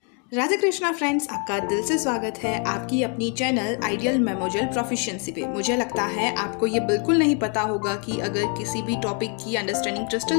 Radhe Krishna friends, आपका दिल से स्वागत है आपकी अपनी चैनल आइडियल मेमोरियल प्रोफिशिएंसी पे। मुझे लगता है आपको ये बिल्कुल नहीं पता होगा कि अगर किसी भी टॉपिक की अंडरस्टैंडिंग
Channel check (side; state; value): right; quieter; 38.7 dB